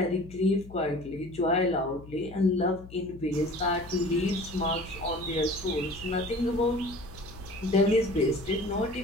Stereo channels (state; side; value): noise; left; hum, 17 dB below the sound